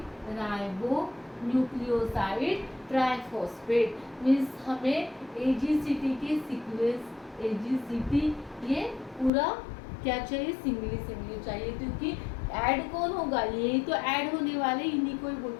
ट्राइफॉस्फेट मीन्स हमें AGCT के सीक्वेंस AGCT ये पूरा क्या चाहिए, सिंगली चाहिए, क्योंकि ऐड कौन होगा, यही तो ऐड होने वाले, इन्हीं को ही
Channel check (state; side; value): drops out; right; at 9.3 s